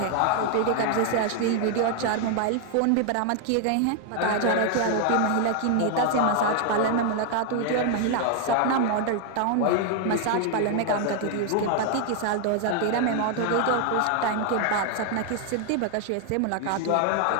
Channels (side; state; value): both; different; correlation 0.00